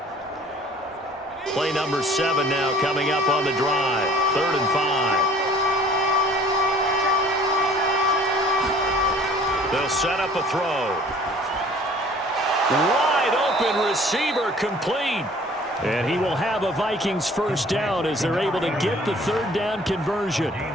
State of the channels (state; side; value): normal; both; correlation 0.52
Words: Play number 7 now coming up on the drive. 3rd and 5. They'll set up a throw. Wide open receiver complete. And he will have a Vikings first down as they're able to get the 3rd down conversion.